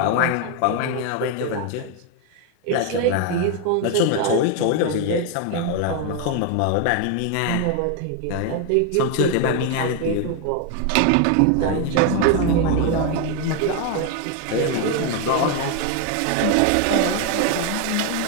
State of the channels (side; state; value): both; different; correlation 0.01